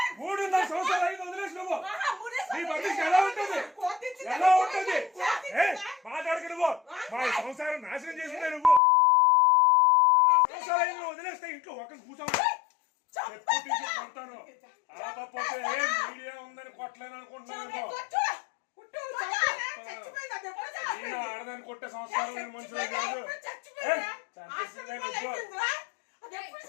3.5 సంవత్సరాలు అయింది వదిలేసి నువ్వు. నీ పర్మిషన్ ఎలా ఉంటుంది? ఎలా ఉంటుంది? మాట్లాడక నువ్వు మా సంసారం నాశనం చేసిందే నువ్వు. సంవత్సరాలు అయింది వదిలేస్తే ఇంట్లో ఒకరిని కూర్చోవాలి ఎప్పుడు తీసుకుంటాను. ఆపపోతే మీడియా ఉందని కొట్టలేను అనుకుంటున్నాను. ఆడదాన్ని కొట్టే సంస్కారం నేను మనుషులు కాదు.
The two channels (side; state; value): right; drops out; at 8.8 s